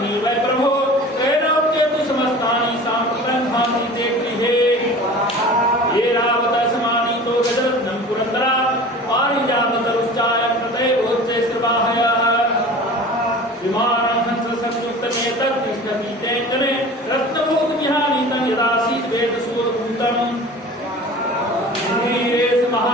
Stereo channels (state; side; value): normal; both; correlation 0.39